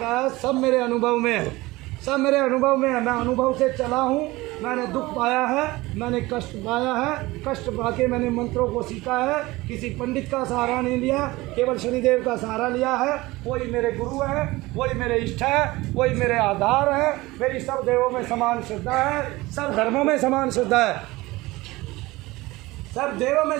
सब मेरे अनुभव में है, सब मेरे अनुभव में है। मैं अनुभव से चला हूँ, मैंने दुख पाया है, मैंने कष्ट पाया है, कष्ट पाके मैंने मंत्रों को सीखा है, किसी पंडित का सहारा नहीं लिया, केवल शनिदेव का सहारा लिया है। वही मेरे गुरु है, वही मेरे इष्ट है, वही मेरे आधार है। मेरी सब देवों में समान श्रद्धा है, सब धर्मों में समान श्रद्धा है, सब देवों में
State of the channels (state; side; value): quieter; left; 20.3 dB